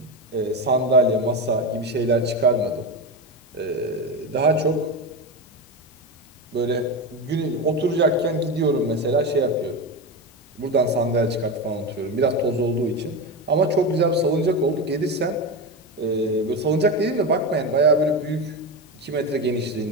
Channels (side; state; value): both; normal; correlation 0.18